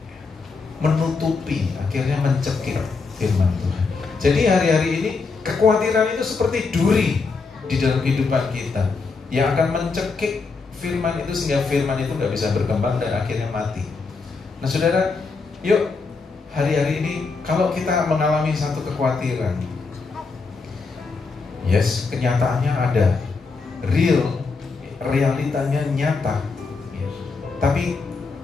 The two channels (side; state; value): right; quieter; 4.4 dB